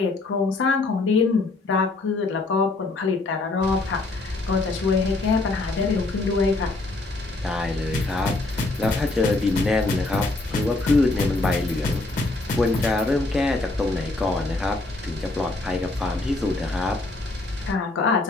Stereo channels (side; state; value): right; quieter; 3.1 dB